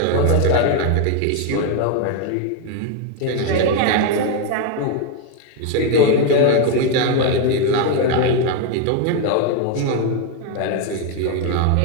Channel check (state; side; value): different; both; correlation 0.01